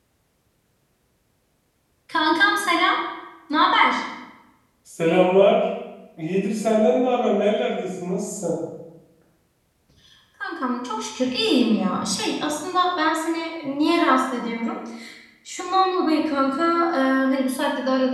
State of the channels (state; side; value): identical; both; correlation 1.00